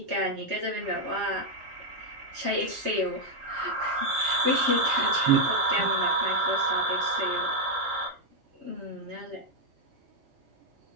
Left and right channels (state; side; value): late; left; 3.3 ms